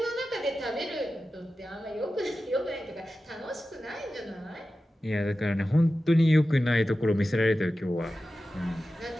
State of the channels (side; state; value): both; normal; correlation 0.94